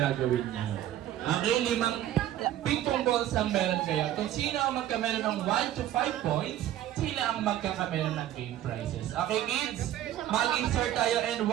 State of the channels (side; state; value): left; quieter; 12.6 dB